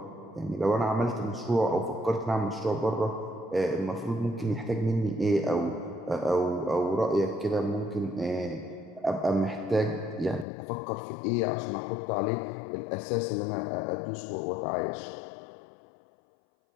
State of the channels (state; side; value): drops out; right; at 10.5 s